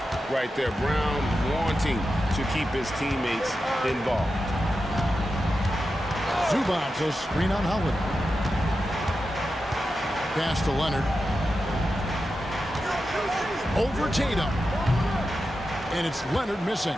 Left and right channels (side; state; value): both; normal; correlation 0.90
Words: right there. Brown wanting to keep his teammates involved. Zubac, a screen on Holiday. Pass to Leonard. Over Tatum. And it's Leonard missing.